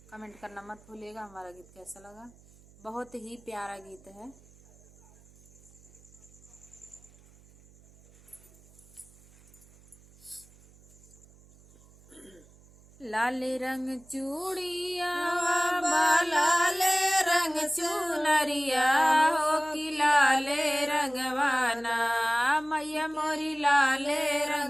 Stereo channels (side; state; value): right; noise; hum, 26 dB below the sound